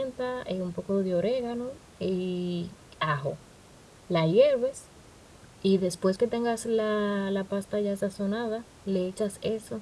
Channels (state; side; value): identical; both; correlation 1.00